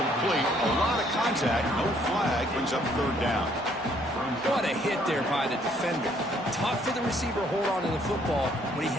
A lot of contact. No flag. Brings up third down. What a hit there by the defender. Tough for the receiver to hold on to the football when he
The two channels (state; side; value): normal; both; correlation 0.65